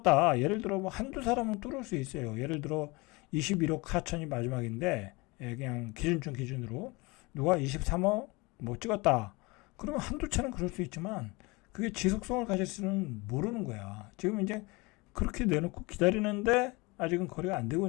예를 들어 뭐 한두 사람은 뚫을 수 있어요. 예를 들어 21억 4천이 마지막인데, 그냥 기준점 기준으로 누가 23억 뭐 찍었다. 그러면 한두 차는 그럴 수 있지만 그게 지속성을 가질지는 모르는 거야. 지금 이제 그렇게 내놓고 기다리는데 아직은 거래가 안 되고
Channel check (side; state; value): right; quieter; 25.1 dB